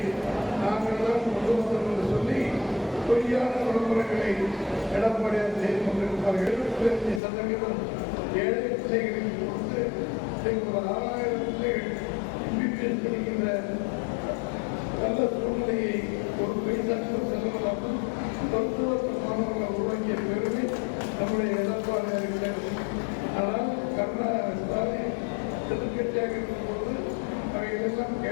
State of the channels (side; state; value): right; drops out; at 7.2 s